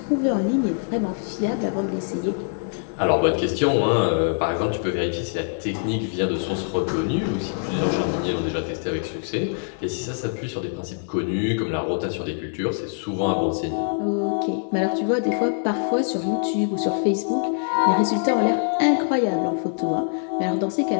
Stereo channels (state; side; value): silent; right; digital silence